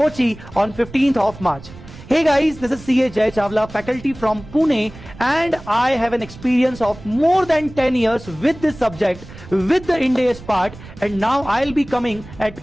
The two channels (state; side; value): noise; right; rumble, 17 dB below the sound